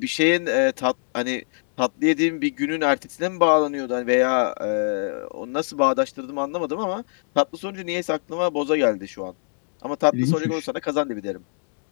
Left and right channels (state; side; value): silent; right; 63 dB below the other